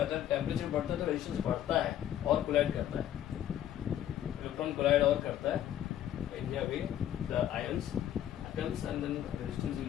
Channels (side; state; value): right; quieter; 11.3 dB